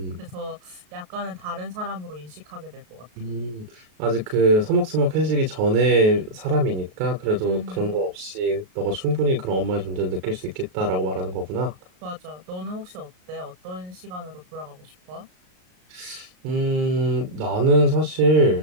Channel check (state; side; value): late; left; 33 ms